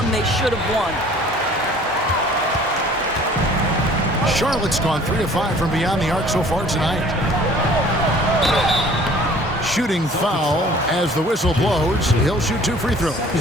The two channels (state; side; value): normal; both; correlation 0.51